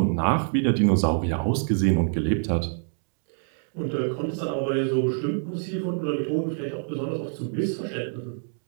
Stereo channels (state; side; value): silent; left; digital silence